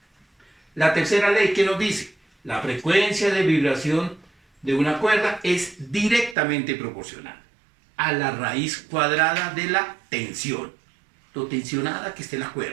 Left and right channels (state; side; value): drops out; left; at 6.4 s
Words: La tercera ley, ¿qué nos dice? La frecuencia de vibración de una cuerda es directamente proporcional a la raíz cuadrada de la tensión. Lo tensionada que esté la